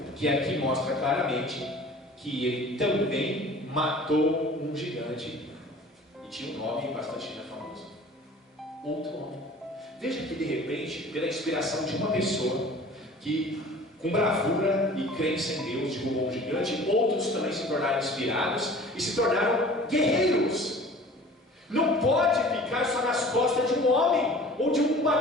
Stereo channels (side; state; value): both; normal; correlation 0.45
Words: que aqui mostra claramente que ele também matou um gigante, e tinha um nome bastante famoso, outro homem. Veja que de repente, pela inspiração de uma pessoa que com bravura e crença em Deus derrubou um gigante, outros também se tornaram inspirados e se tornaram guerreiros. Não pode ficar só nas costas de um homem ou de